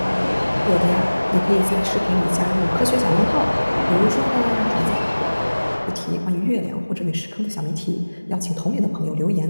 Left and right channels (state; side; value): inverted; both; correlation -1.00